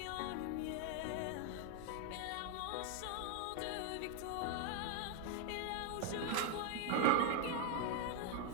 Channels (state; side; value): different; both; correlation 0.00